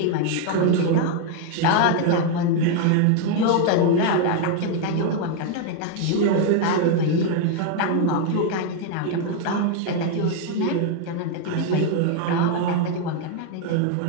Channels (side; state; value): both; different; correlation 0.01